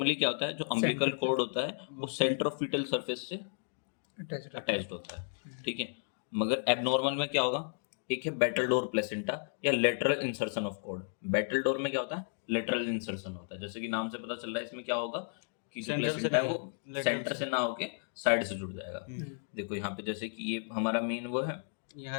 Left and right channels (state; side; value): silent; right; digital silence